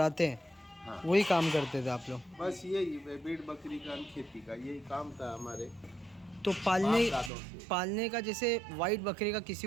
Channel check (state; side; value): drops out; left; at 7.3 s